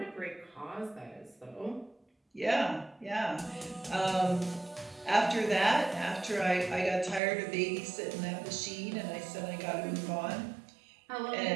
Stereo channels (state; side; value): drops out; left; at 7.2 s